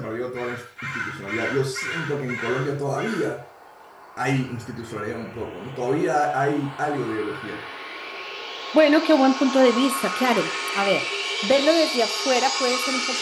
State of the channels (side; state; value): both; identical; correlation 1.00